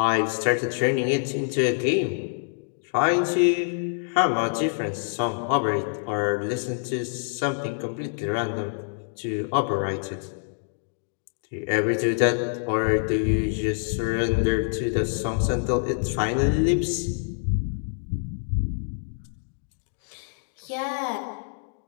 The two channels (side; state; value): right; silent; digital silence